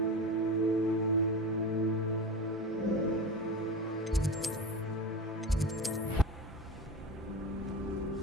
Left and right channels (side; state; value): both; normal; correlation 0.27